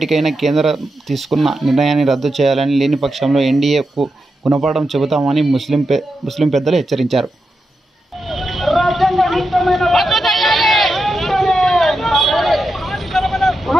కేంద్రం తీసుకున్న నిర్ణయాన్ని రద్దు చేయాలని, లేని పక్షంలో ఎన్డీఏకు గుణపాఠం చెబుతామని ముస్లిం పెద్దలు హెచ్చరించారు.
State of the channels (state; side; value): normal; both; correlation 0.88